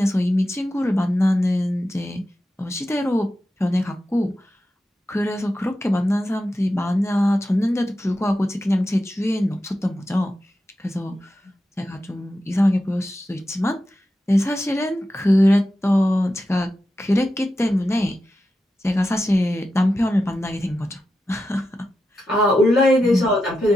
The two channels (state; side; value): normal; both; correlation 0.90